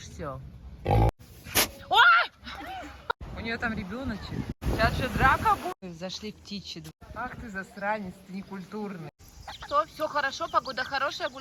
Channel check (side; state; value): both; identical; correlation 1.00